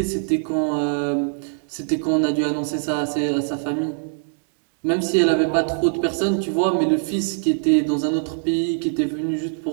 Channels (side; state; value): left; silent; 64 dB below the other